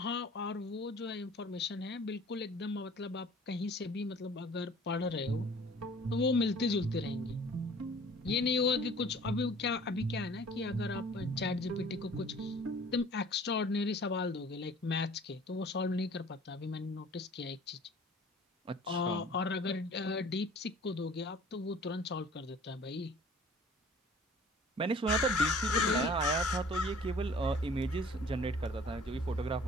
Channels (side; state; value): both; normal; correlation 0.50